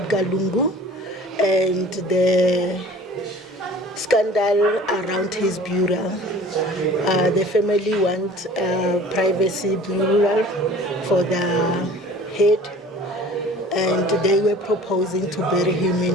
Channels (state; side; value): normal; both; correlation 0.45